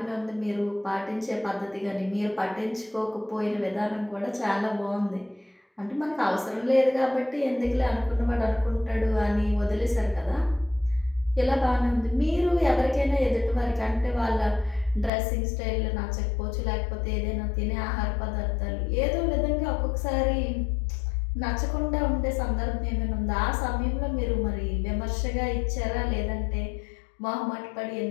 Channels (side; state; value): right; drops out; at 15.1 s